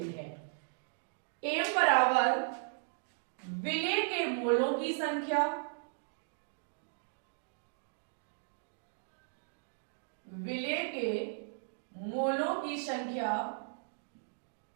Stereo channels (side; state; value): left; silent; digital silence